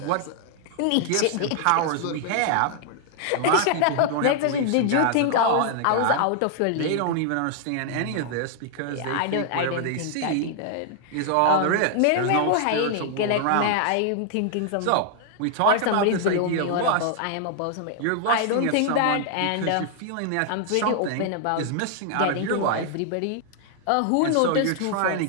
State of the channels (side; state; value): both; different; correlation -0.01